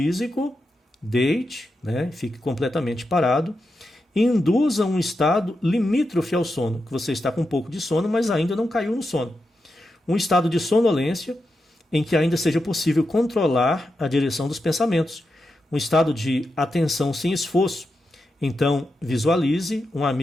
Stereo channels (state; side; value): normal; both; correlation 0.88